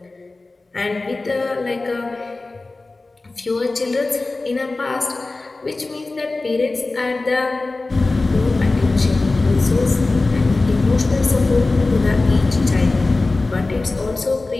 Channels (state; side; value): quieter; right; 3.3 dB